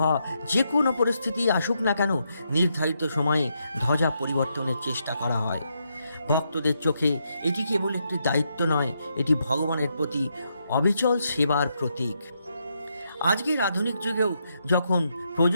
যে কোনো পরিস্থিতি আসুক না কেন, নির্ধারিত সময়ে ধ্বজা পরিবর্তনের চেষ্টা করা হয়। ভক্তদের চোখে এটি কেবল একটি দায়িত্ব নয়, এটি ভগবানের প্রতি অবিচল সেবার প্রতীক। আজকের আধুনিক যুগেও যখন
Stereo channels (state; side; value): inverted; both; correlation -0.80